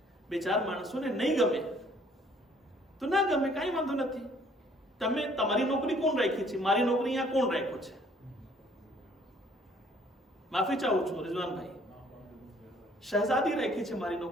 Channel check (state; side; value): normal; both; correlation 0.60